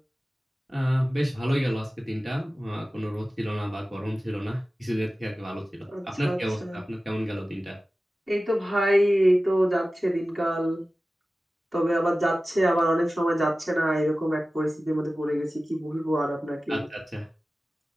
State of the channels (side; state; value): both; normal; correlation 0.96